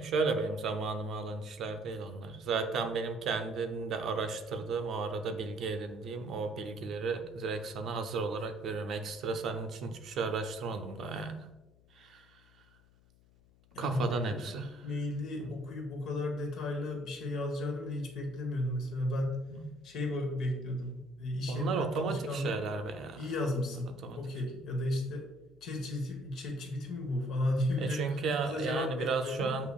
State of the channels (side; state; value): left; noise; hum, 28 dB below the sound